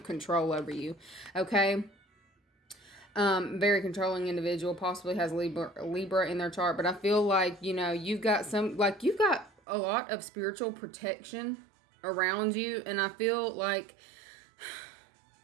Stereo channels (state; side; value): drops out; left; at 9.6 s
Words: control over you. Okay. Very controlling individual, possibly has Libra in their chart, but I feel like, you've got a lot of spiritual protection around you. And I feel like